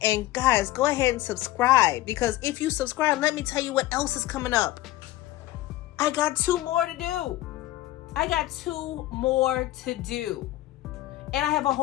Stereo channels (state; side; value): quieter; right; 16.3 dB